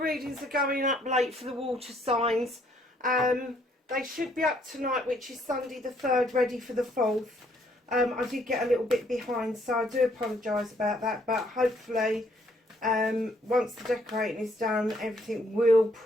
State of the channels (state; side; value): normal; both; correlation 0.67